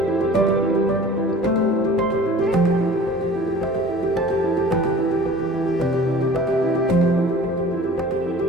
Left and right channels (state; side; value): normal; both; correlation 0.45